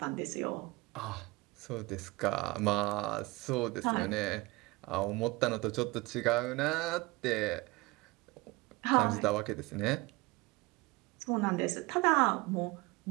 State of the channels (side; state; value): left; quieter; 22.5 dB